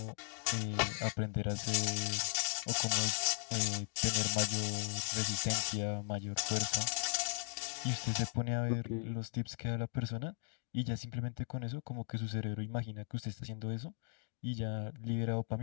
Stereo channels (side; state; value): right; silent; 53 dB below the other